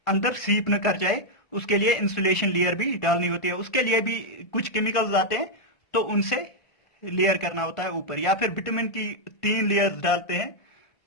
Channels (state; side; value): late; right; 1.4 ms